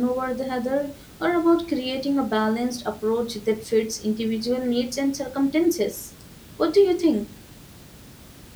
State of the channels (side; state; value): both; identical; correlation 1.00